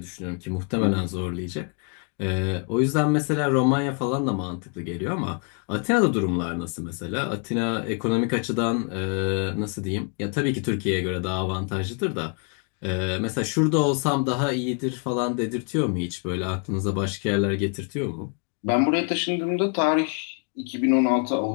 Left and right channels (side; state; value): right; quieter; 39.3 dB